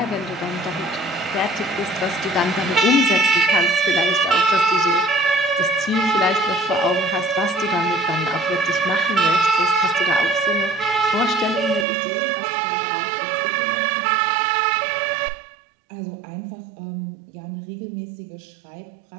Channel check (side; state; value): left; drops out; at 11.9 s